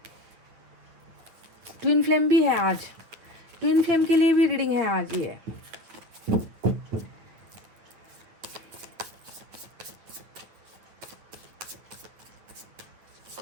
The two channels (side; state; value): left; late; 9.3 ms